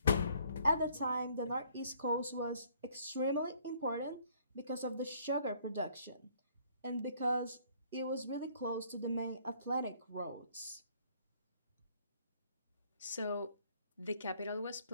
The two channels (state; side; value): inverted; both; correlation -0.62